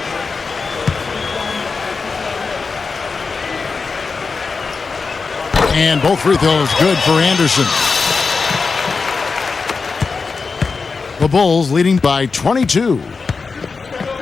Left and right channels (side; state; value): right; quieter; 4.6 dB